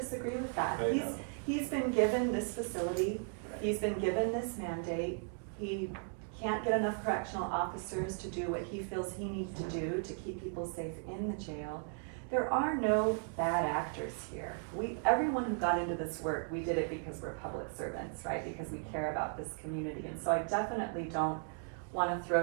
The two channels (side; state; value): left; silent; 54 dB below the other